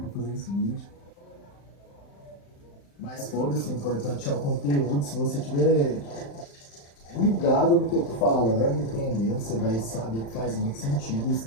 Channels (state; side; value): late; right; 35 ms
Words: fazer esse vídeo. Mas foda-se, o importante é o conteúdo. Se você tiver ligado no que eu tô falando, entendendo, você vai saber que faz muito sentido isso